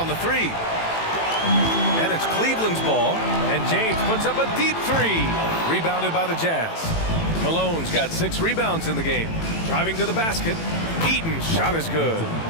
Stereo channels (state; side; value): late; right; 18 ms